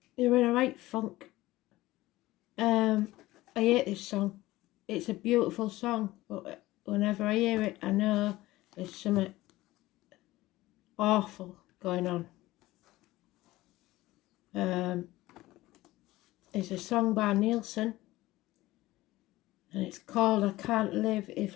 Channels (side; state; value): right; quieter; 17.8 dB